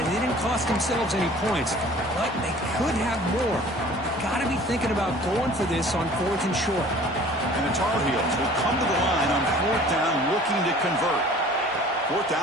they didn't cost themselves any points. But they could have more. Got to be thinking about going for this on 4th and short. And And the Tar Heels will come to the line on 4th down looking to convert. 4th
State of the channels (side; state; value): both; normal; correlation 0.48